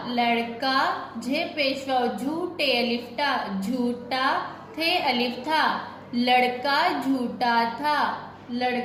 लड़का, झे पेशवा झूठे अलिफ टा, झूठा, थे अलिफ था, लड़का झूठा था,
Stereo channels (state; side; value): identical; both; correlation 1.00